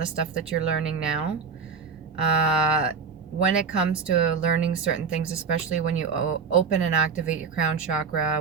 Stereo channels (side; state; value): left; quieter; 5.5 dB